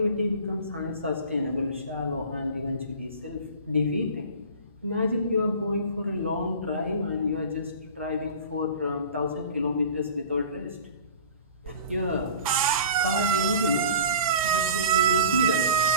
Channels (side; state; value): both; inverted; correlation -0.40